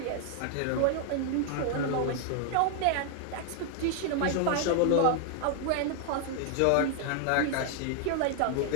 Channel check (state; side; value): different; both; correlation 0.00